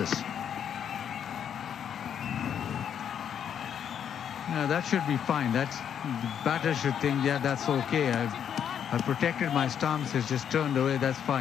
No, that should be fine. The batter should think, yeah, that's okay. I've protected my stumps. It's just turned away. That's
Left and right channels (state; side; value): quieter; right; 8.6 dB